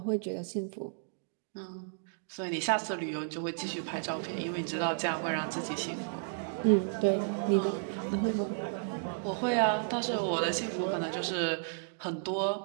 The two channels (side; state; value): left; silent; digital silence